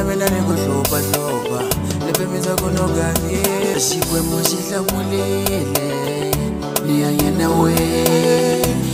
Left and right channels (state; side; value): identical; both; correlation 1.00